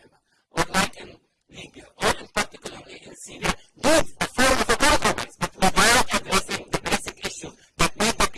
or like in Libya, or in particularly in Syria, need a form of a compromise, but without addressing the basic issues that made the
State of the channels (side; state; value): both; identical; correlation 1.00